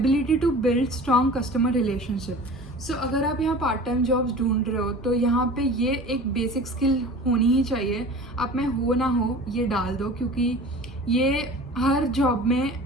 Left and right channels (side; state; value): both; normal; correlation 0.40